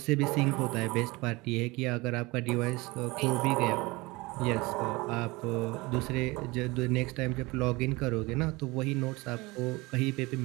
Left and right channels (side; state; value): left; quieter; 23.2 dB